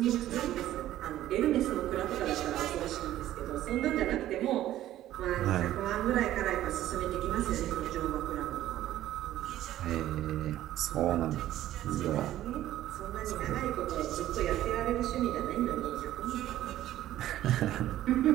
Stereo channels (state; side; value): quieter; left; 13.5 dB